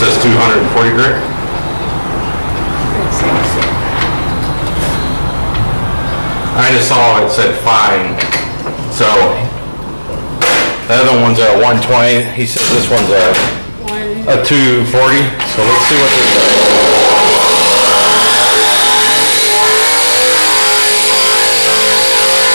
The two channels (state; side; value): inverted; both; correlation -1.00